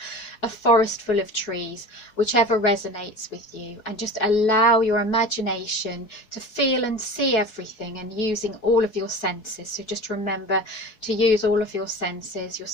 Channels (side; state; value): right; late; 4.7 ms